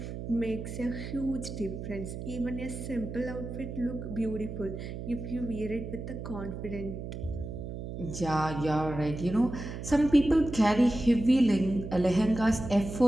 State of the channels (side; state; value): right; noise; hum, 8 dB below the sound